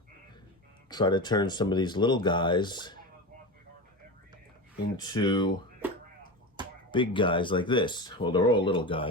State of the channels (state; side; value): normal; both; correlation 0.24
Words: try to turn some of these little guys into big guys like this. Well, they're all little